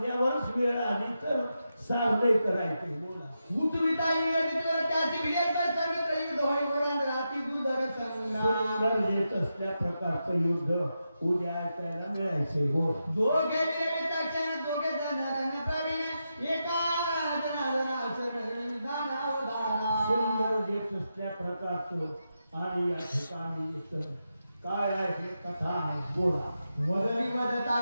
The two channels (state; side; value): inverted; both; correlation -0.87